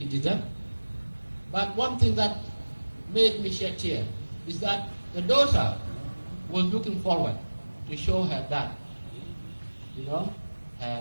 didn't. But one thing that made me shed tears is that the daughter was looking forward to show her dad,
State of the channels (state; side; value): inverted; both; correlation -1.00